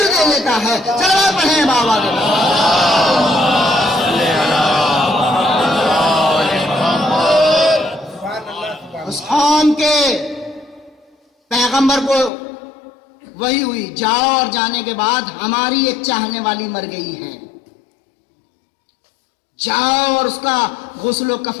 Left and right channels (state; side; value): drops out; right; at 12.3 s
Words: دے دیتا ہے. چلو پڑھیں بابا کے اس قوم کے پیغمبر کو وہی ہوئی, جاؤ اور جانے کے بعد ہماری ایک چاہنے والی مر گئی ہے, جاؤ اور اس کا غسل و